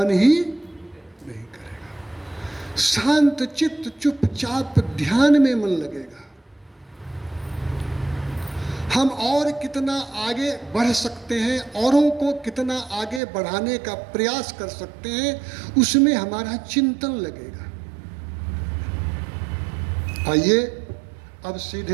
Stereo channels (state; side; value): drops out; left; at 13.2 s